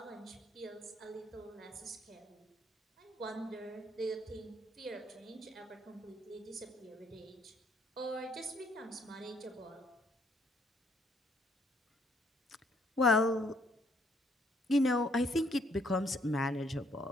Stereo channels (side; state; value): both; normal; correlation 0.67